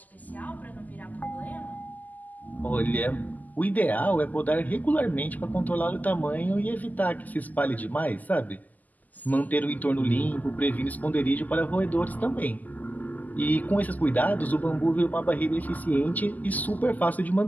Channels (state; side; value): late; right; 0.081 ms